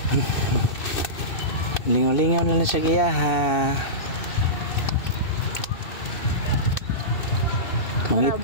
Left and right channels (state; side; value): late; right; 2.6 ms